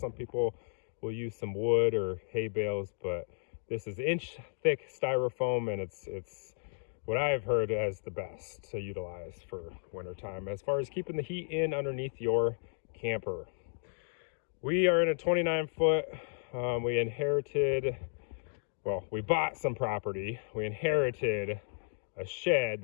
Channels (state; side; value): silent; right; digital silence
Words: people will use some wood or hay bales, but this is inch thick styrofoam and it's what I've heard as the best to utilize for wintertime as far as keeping the heat in underneath your camper. We are in a 29-foot. We bought some property. We inherited a shed